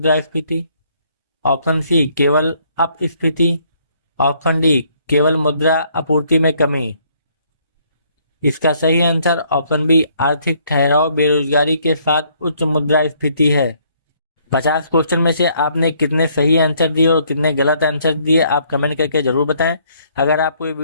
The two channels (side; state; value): both; inverted; correlation -0.66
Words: ऑप्शन सी केवल अपस्फीति, ऑप्शन डी केवल मुद्रा आपूर्ति में कमी। इसका सही आंसर ऑप्शन बी आर्थिक ठहराव बेरोजगारी के साथ उच्च मुद्रास्फीति है। 50 क्वेश्चन में से आपने कितने सही आंसर दिए और कितने गलत आंसर दिए आप कमेंट करके जरूर बताएं। अगर आपको ये